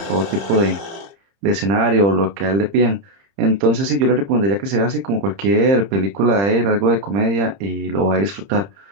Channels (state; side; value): late; left; 30 ms